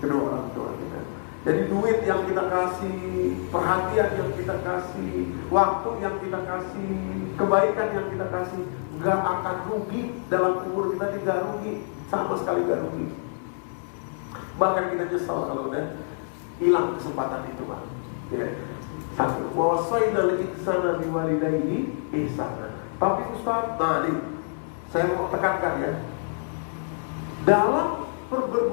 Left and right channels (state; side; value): silent; right; digital silence